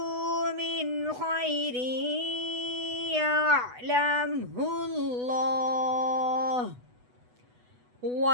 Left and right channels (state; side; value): late; left; 8.1 ms